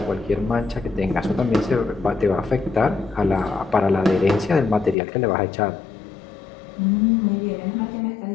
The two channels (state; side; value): drops out; right; at 5.0 s